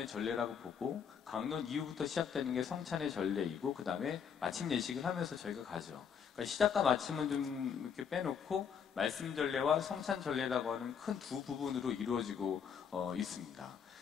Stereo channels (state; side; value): quieter; right; 7.2 dB